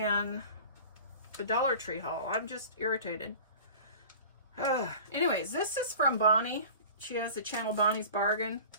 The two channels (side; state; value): both; inverted; correlation -0.40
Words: the Dollar Tree haul. I'm just irritated. Anyways, this is from Bonnie. She has the channel Bonnie's Bargain.